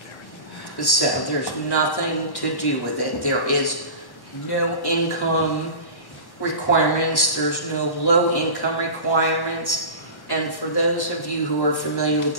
So there's nothing to do with it. There is no income. requirements, there's no low-income requirements, and for those of you who are familiar with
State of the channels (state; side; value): late; right; 1.1 ms